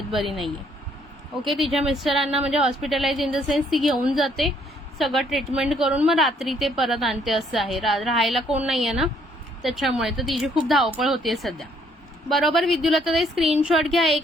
बरी नाहीये. ओके, तिच्या मिस्टरांना म्हणजे हॉस्पिटलाइज इन द सेन्स ती घेऊन जाते, सगळं ट्रीटमेंट करून मग रात्री ते परत आणते, असं आहे. राहायला कोण नाहीये ना त्याच्यामुळे, तर तिची खूप धावपळ होतीये सध्या. बरोबर विद्युलताताई, स्क्रीनशॉट घ्या.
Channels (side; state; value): both; normal; correlation 0.67